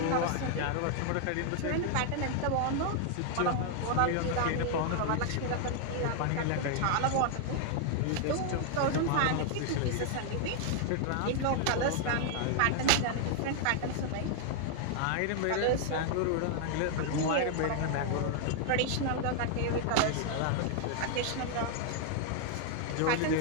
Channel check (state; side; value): different; both; correlation 0.00